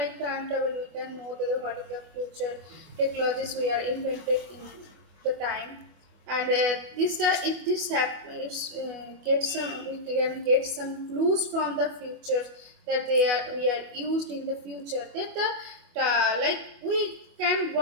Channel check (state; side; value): late; left; 24 ms